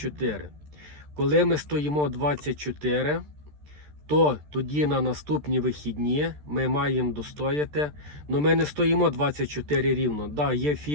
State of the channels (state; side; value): late; left; 13 ms